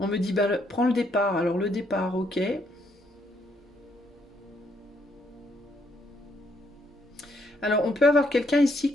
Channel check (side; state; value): both; normal; correlation 0.73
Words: me dit, bah, prends le départ. Alors le départ, ok. Alors on peut avoir quelqu'un ici